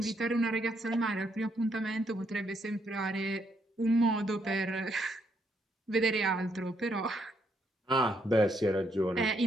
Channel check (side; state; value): both; normal; correlation 0.75